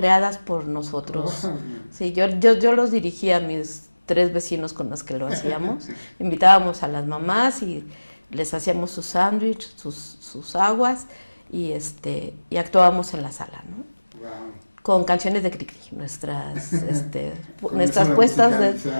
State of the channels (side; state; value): both; inverted; correlation -1.00